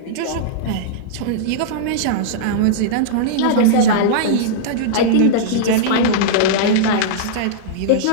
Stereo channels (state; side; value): different; both; correlation -0.03